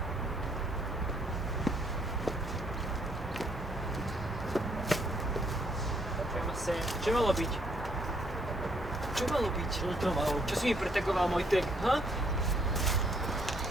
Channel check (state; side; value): normal; both; correlation 0.69